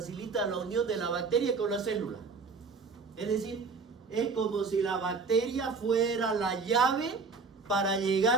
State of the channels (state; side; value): quieter; left; 4.6 dB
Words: la unión de la bacteria con la célula. Es decir, es como si la bacteria fuera la llave para